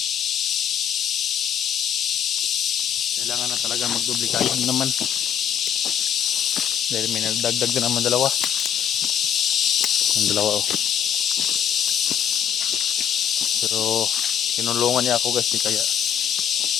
Kailangan na talaga magduplikado naman. Dahil may nagdagdag na naman dalawa. Ang dalawa, oh. Pero tinulungan niya ako, guys, kaya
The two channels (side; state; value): right; quieter; 8.8 dB